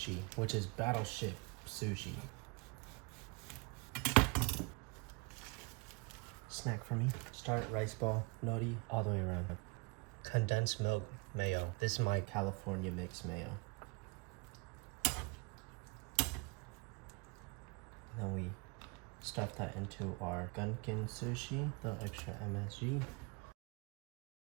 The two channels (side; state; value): left; quieter; 29.5 dB